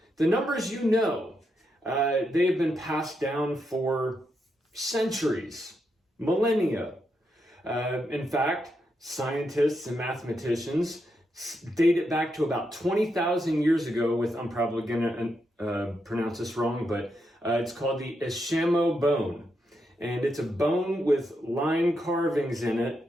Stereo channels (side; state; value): both; normal; correlation 0.82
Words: The numbers they have been passed down for centuries, millennia. In fact, scientists and mathematicians date it back to about 20,000 years ago with, I'm probably going to pronounce this wrong, but it's called the Ishamo bone. And it's a bone with line carvings in